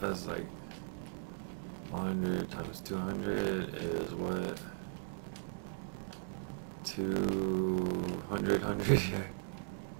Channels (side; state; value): left; silent; digital silence